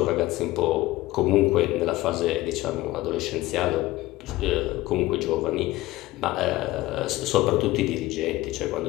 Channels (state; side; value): quieter; right; 17.9 dB